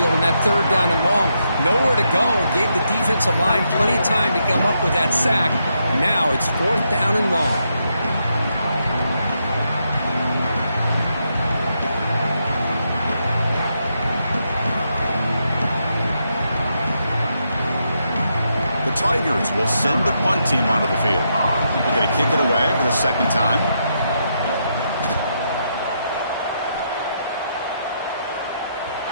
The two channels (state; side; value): inverted; both; correlation -0.80